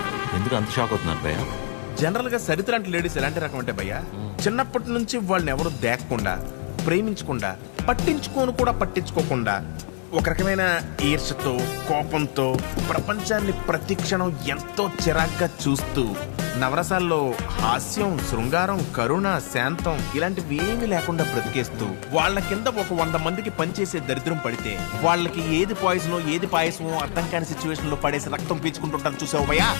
ఎందుకు అంత షాక్ అవుతున్నారు భయ్య? జనరల్ గా సరిత లాంటి లేడీస్ ఎలాంటి రకం అంటే భయ్యా, చిన్నప్పటి నుంచి వాళ్ళని ఎవరు దేకకుండా, ప్రేమించకుండా, పట్టించుకోకుండా ఒక రకమైన ఈర్షతో, కోపంతో ప్రపంచాన్ని ప్రతి క్షణం ఎంతో చిరాగ్గా చూస్తూ నవరసాల్లో హాస్యం, శృంగారం, కరుణ, శాంతం ఇలాంటివి ఏమీ లేకుండా బ్రతికేస్తూ వాళ్ళ కింద ఒక 100 మందికి పనిచేసే దరిద్రం పడితే వాళ్ళకి ఏది పాయిజనో ఏది పాయసమో అర్థం కాని సిచ్యువేషన్ లో పడేసి రక్తం పీల్చుకుంటుంటారు చూసావు భయ్యా.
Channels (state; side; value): silent; right; 62 dB below the other